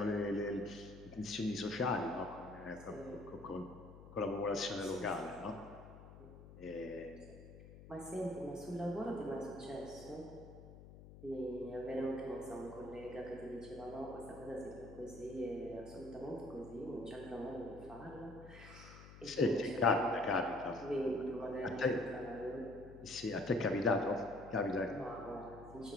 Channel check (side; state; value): left; noise; hum, 16 dB below the sound